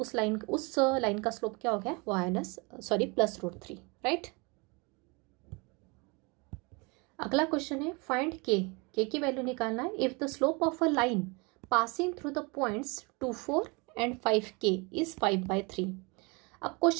लाइन का स्लोप क्या हो गया, +√3, राइट। अगला क्वेश्चन है फाइंड के की वैल्यू निकालना है। If the slope of a line passing through the points 2, 4 and 5K is 5/3। अब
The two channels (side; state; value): left; quieter; 29.0 dB